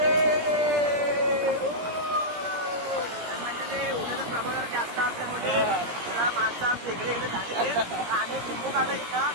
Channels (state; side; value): late; left; 17 ms